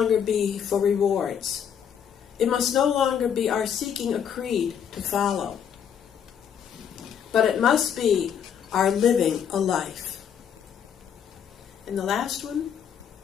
be for rewards. It must no longer be our seeking a creed to follow, but it must be our living a life. And the last one,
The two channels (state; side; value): quieter; right; 8.2 dB